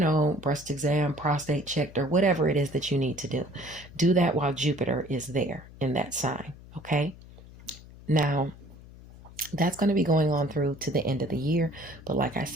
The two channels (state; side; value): noise; left; hum, 19 dB below the sound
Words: breast exam, prostate checked, or whatever it is that you need to do. Do that while Jupiter is there in that sign, okay? Now, that's going to be going on through to the end of the year. But like I